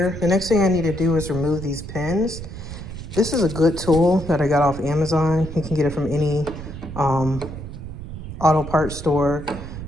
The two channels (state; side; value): noise; right; rumble, 10 dB below the sound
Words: The next thing I need to do is remove these pins. This is a good tool that I got off Amazon. You can get it from any auto parts store